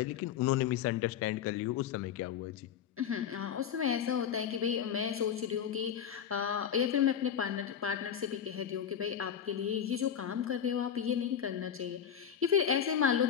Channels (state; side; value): quieter; right; 8.7 dB